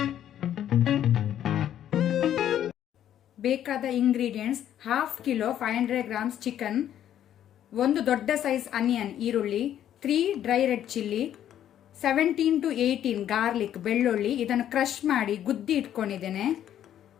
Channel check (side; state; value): right; quieter; 10.8 dB